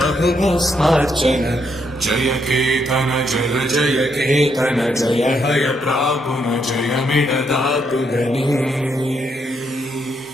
जय केतन जय जय केतन जय हय प्रापुन जय मिडदातुगनी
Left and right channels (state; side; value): normal; both; correlation 0.76